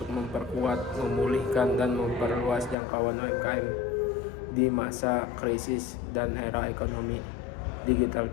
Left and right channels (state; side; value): drops out; right; at 2.8 s